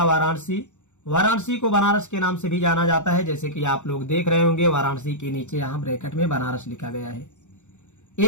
वाराणसी। वाराणसी को बनारस के नाम से भी जाना जाता है। जैसे कि आप लोग देख रहे होंगे, वाराणसी के नीचे यहाँ ब्रैकेट में बनारस लिखा गया है।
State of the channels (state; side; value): late; right; 0.84 ms